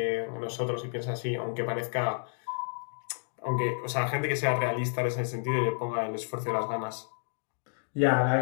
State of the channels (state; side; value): silent; right; digital silence